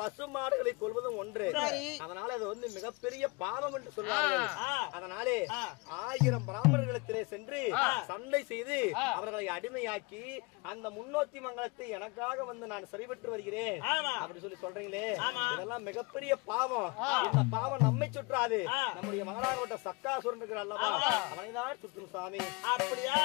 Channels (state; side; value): quieter; right; 27.6 dB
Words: மாடுகளை கொள்வதும் ஒன்று. அதனால அது வந்து மிகப்பெரிய பாவம் என்று சொல்வார்கள். அதனாலே 1000 பிராமணர்களிடத்திலே சென்று சண்டை செய்து அவர்களை அடிமையாக்கி அந்த முன்னோத்தி மங்கலத்தை எனக்காக வந்து நான் சரிபெற்று வருகிறேன் அப்படி சொல்லி சொல்றீங்களே, இதெல்லாம் மிகப்பெரிய பாவம். இந்த பாவம் நம்மை சுற்றாது, நம்முடைய மகளாகப்பட்ட சக்காசுரன் இருக்கிற அல்லவா, அவனைதான் சுற்றும் சாமி. அப்படியா?